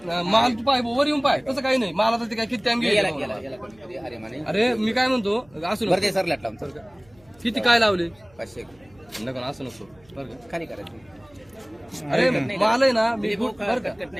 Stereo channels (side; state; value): right; noise; hum, 29 dB below the sound